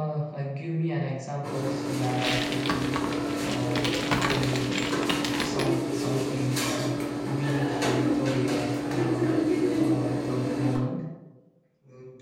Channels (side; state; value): both; identical; correlation 1.00